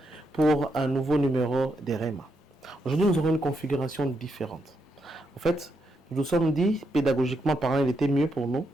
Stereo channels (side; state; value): both; normal; correlation 0.81